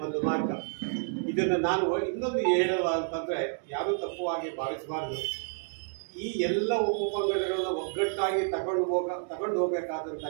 ಒಂದು ಮಾರ್ಗ. ಇದನ್ನು ನಾನು ಇನ್ನೊಂದು ಹೇಳಲ್ಲ ಅಂತಂದ್ರೆ, ಯಾರೂ ತಪ್ಪುವಾಗಿ ಭಾವಿಸಬಾರ್ದು. ಈ ಎಲ್ಲ ಉಪಪಂಗಡಗಳನ್ನ ಒಗ್ಗಟ್ಟಾಗಿ ತಗೊಂಡು ಹೋಗ್ಬೇಕಾದಂಥ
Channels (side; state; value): left; silent; 58 dB below the other